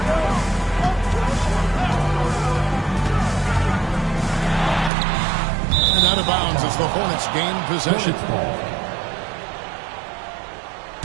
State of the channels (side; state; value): left; drops out; at 4.9 s